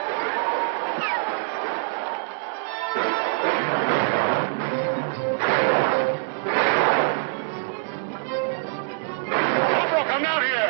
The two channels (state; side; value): silent; left; digital silence